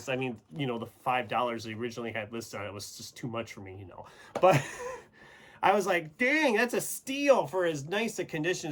I mean, you know, the $5 they originally had listed on it was just too much for me, you know. But I was like, dang, that's a steal for as nice a condition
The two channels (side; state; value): both; identical; correlation 1.00